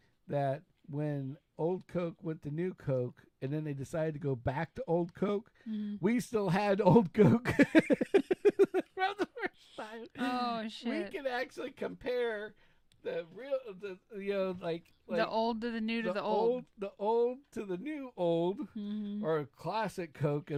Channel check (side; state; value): both; identical; correlation 1.00